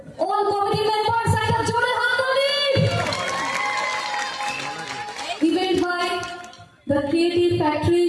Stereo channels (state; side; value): identical; both; correlation 1.00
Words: all committee members, একটা জোরে হাততালি। Event by the Creative Factory,